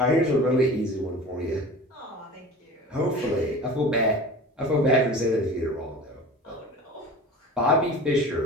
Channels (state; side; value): normal; both; correlation 0.37